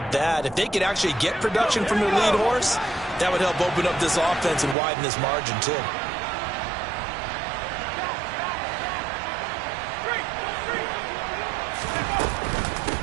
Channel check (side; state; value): left; drops out; at 4.8 s